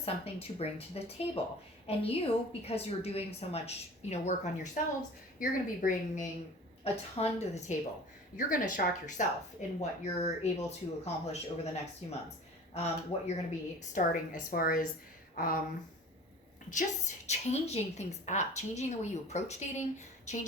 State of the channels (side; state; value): both; normal; correlation 0.41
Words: something to bring to the table. And you, because you're doing so much, work on yourselves, you're going to be bringing a ton to the table. You're going to shock yourself in what you're able to accomplish over the next few months. What you're going to be starting as far as just changing things up, changing the way you approach dating,